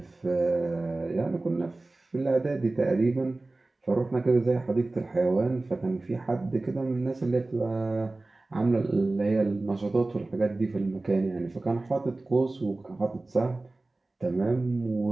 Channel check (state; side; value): quieter; left; 3.1 dB